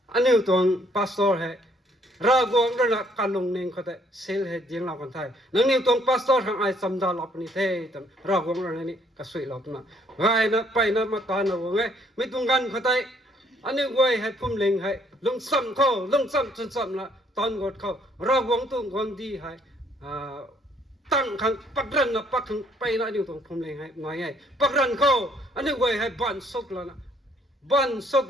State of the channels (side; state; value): both; normal; correlation 0.65